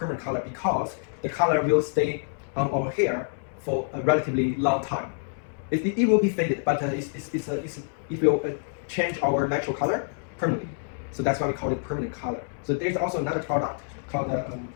color because the color will stay on our hair for a relatively long time. It will be faded, but it will change our natural color permanently. So that's why we call it permanent color. So there's also another product called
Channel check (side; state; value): right; silent; 60 dB below the other